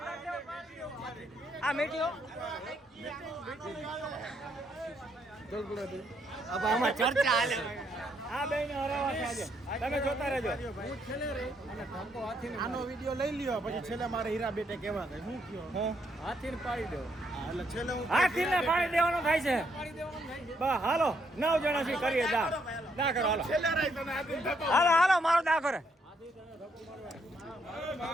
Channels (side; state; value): both; normal; correlation 0.74